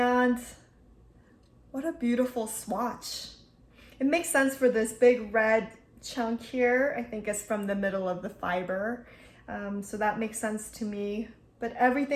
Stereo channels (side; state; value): both; identical; correlation 1.00